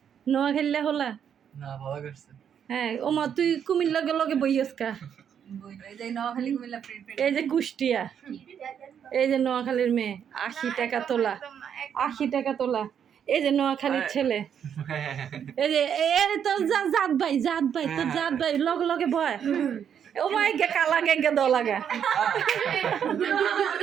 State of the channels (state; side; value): quieter; left; 8.4 dB